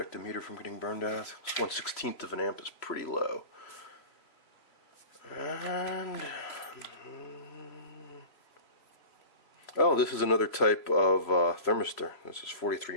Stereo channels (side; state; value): right; late; 3.0 ms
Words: the meter from getting burned out. This 1/16th of an amp is pretty low. And oh, this is another type of thermistor. This is